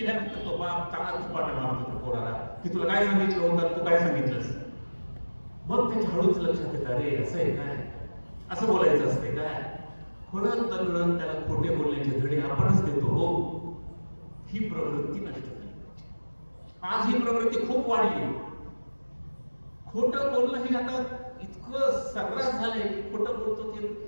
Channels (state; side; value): inverted; both; correlation -1.00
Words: तो बाप चांगला झपाटा मारतो त्या पोराला की तुला काय सांगितलं होतं, तू काय सांगितलंस. मग त्याच्या हळूच लक्षात येतं, अरे असं आहे काय, असं बोलायचं असते काय. खोडत दगडत त्याला खोटे बोलण्याचे धडे आपणच देतो. हो, ही प्रवृत्ती नष्ट झाली. आज ही प्रवृत्ती खूप वाढली, खोटं बोलणं हे आता इतकं सर्रास झालंय की खोटं बोलतो ते